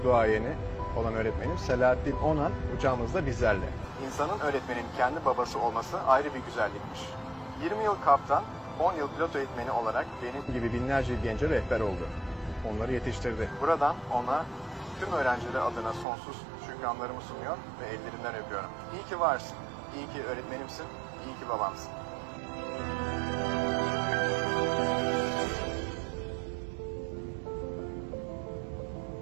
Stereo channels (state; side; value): drops out; left; at 16.1 s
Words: duayeni olan öğretmenim Selahattin Onan uçağımızda bizlerle. İnsanın öğretmenin kendi babası olması ayrı bir güzellikmiş. 20 yıl kaptan, 10 yıl pilot eğitmeni olarak benim gibi binlerce gence rehber oldu. Onları yetiştirdi. Buradan ona tüm öğrencileri adına sonsuz şükranlarımı sunuyor ve ellerinden öpüyorum. İyi ki varsın, iyi ki öğretmenimsin, iyi ki babamsın.